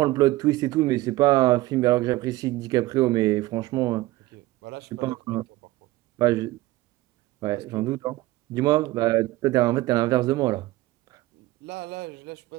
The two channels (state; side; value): quieter; left; 17.9 dB